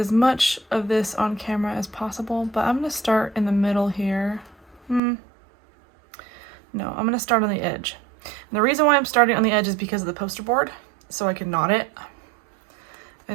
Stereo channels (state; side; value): drops out; left; at 5.0 s